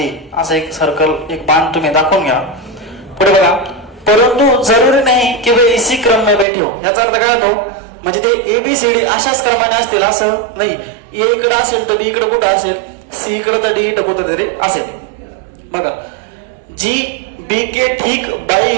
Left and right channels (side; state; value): left; drops out; at 6.5 s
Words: असं एक सर्कल एक बाण तुम्ही दाखवून घ्या. पुढे बघा, परंतु जरुरी नाही की वे इसी क्रम में बैठे हो. याचा अर्थ काय होतो, म्हणजे ते ABCD अशाच क्रमाने असतील असं नाही. A इकडे असेल तर B इकडे कुठं असेल, C इकडे तर D इकडे कुठं तरी असेल. बघा, जी B के ठीक बाई